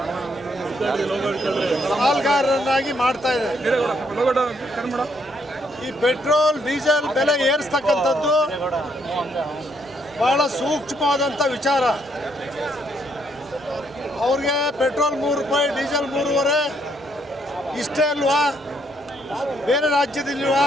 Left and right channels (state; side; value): normal; both; correlation 0.72